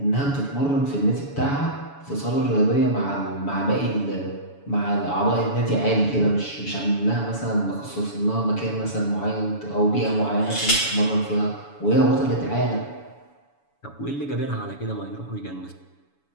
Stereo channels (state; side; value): late; right; 7.0 ms